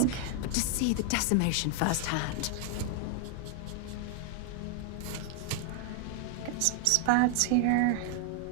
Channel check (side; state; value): both; different; correlation 0.00